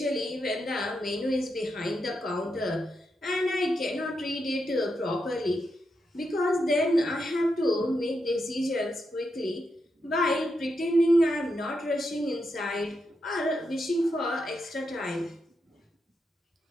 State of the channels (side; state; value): both; normal; correlation 0.84